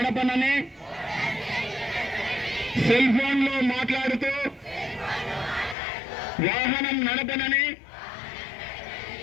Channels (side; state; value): right; drops out; at 5.8 s